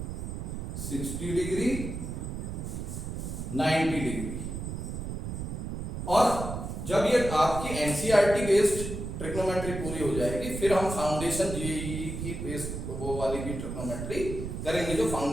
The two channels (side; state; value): right; noise; rumble, 5 dB below the sound